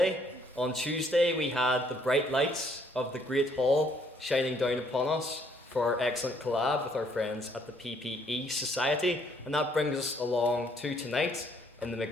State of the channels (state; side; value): normal; both; correlation 0.66